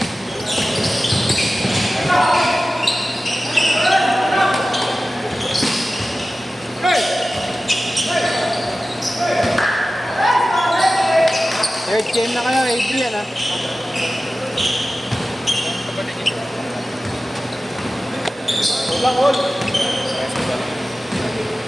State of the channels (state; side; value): normal; both; correlation 0.95